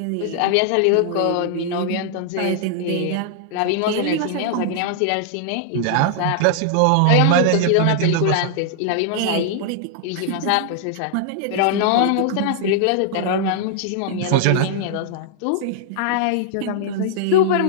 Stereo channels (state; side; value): different; both; correlation -0.01